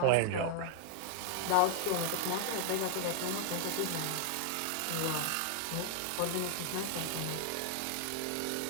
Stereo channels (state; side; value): different; both; correlation 0.00